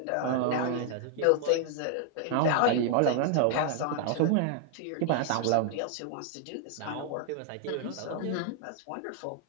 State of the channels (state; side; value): different; both; correlation 0.00